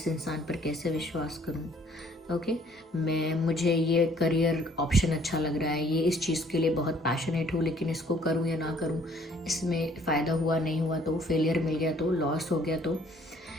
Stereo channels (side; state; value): both; normal; correlation 0.60